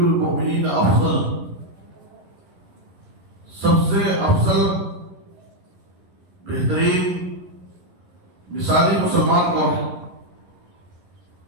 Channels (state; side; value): late; left; 11 ms